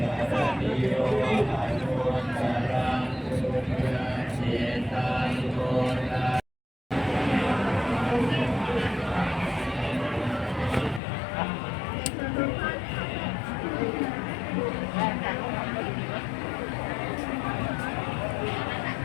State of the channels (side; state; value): right; drops out; at 11.0 s